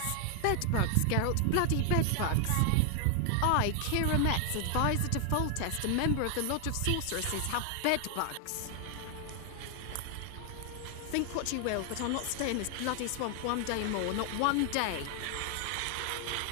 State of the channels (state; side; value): different; both; correlation 0.00